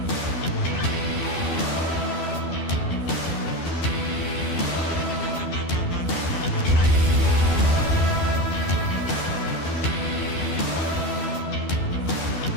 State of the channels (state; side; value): late; right; 12 ms